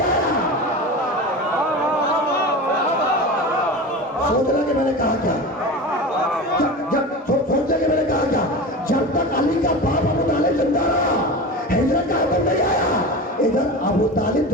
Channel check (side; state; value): both; normal; correlation 0.29